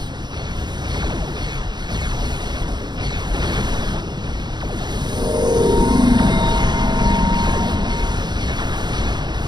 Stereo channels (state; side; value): late; left; 0.21 ms